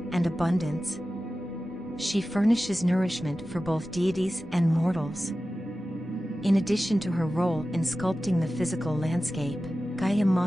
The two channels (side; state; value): both; normal; correlation 0.95